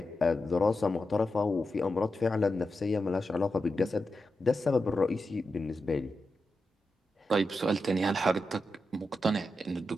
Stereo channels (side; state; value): both; normal; correlation 0.89